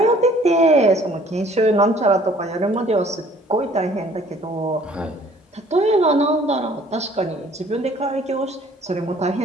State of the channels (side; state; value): both; normal; correlation 0.56